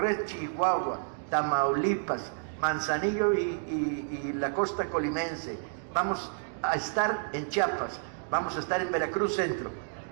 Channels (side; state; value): left; silent; digital silence